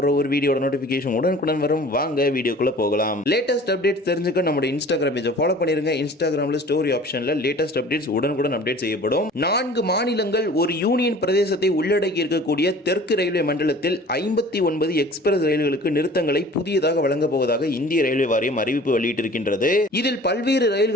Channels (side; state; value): both; normal; correlation 0.46